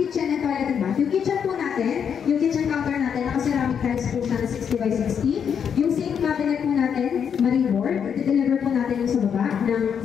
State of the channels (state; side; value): quieter; right; 7.5 dB